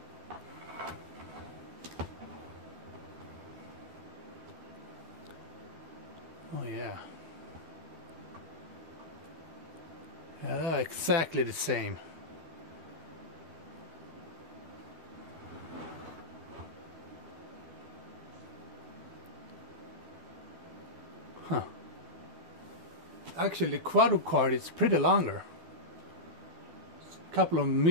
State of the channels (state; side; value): late; left; 12 ms